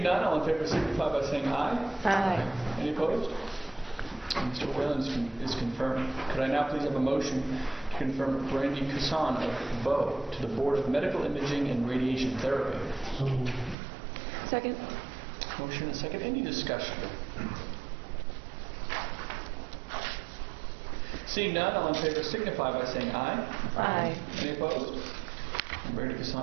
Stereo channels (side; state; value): left; drops out; at 13.8 s